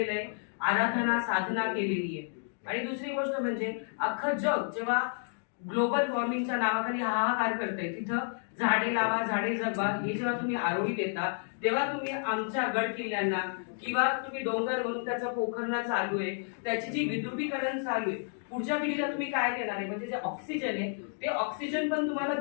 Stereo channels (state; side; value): silent; right; 57 dB below the other